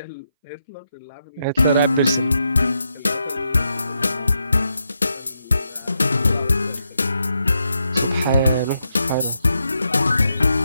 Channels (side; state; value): both; inverted; correlation -0.83